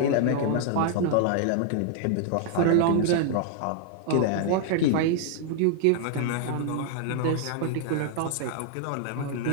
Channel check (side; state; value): both; different; correlation -0.01